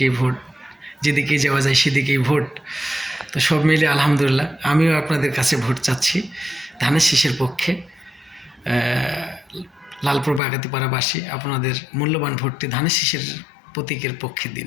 ভোট, যেদিকেই যাওয়া যায় সেদিকেই ভোট। তো সব মিলে আলহামদুলিল্লাহ আমিও আপনাদের কাছে ভোট চাচ্ছি ধানের শীষের পক্ষে। লালপুর বাগাতি পাড়াবাসী, আপনাদের মূল্যবান ভোটটি ধানের শীষের প্রতীকের পক্ষে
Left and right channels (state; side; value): drops out; right; at 10.4 s